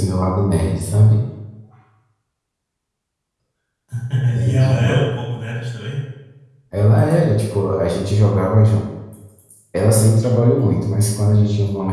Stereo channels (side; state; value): both; identical; correlation 1.00